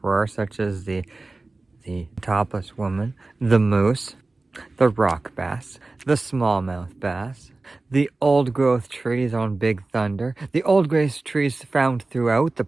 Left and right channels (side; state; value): left; quieter; 3.3 dB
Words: were, such as the topless woman, the moose, the rock bass, the smallmouth bass, the old growth trees on Big Thunder, the old growth trees found throughout the